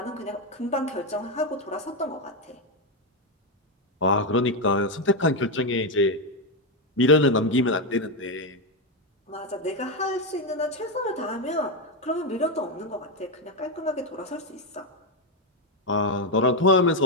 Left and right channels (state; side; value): normal; both; correlation 0.06